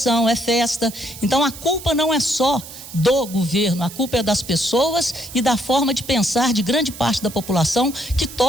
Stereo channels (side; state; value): right; noise; hiss, 14 dB below the sound